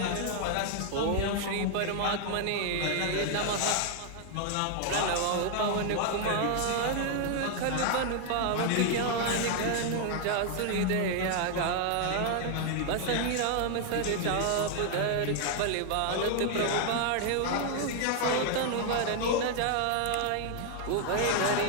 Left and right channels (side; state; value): both; different; correlation 0.00